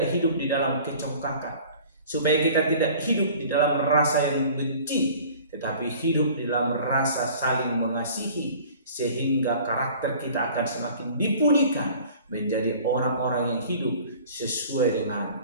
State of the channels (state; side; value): inverted; both; correlation -0.47